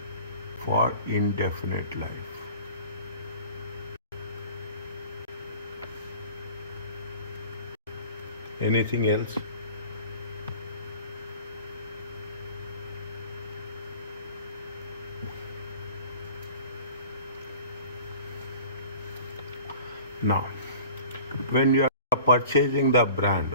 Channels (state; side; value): inverted; both; correlation -0.44